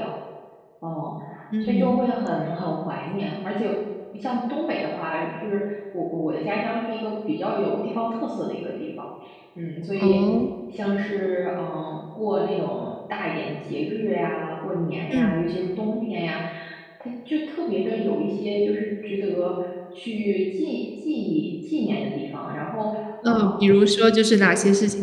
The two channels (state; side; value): identical; both; correlation 1.00